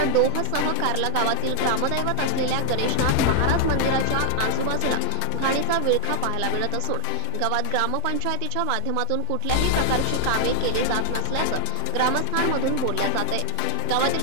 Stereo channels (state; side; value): different; both; correlation 0.00